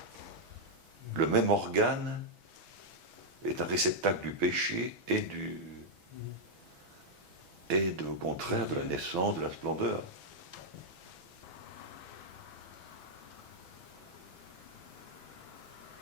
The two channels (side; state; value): left; late; 6.2 ms